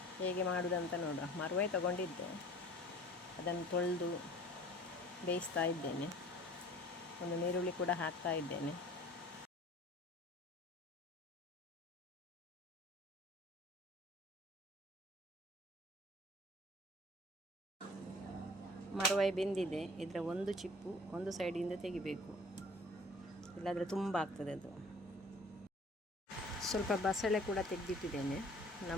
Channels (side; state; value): both; normal; correlation 0.48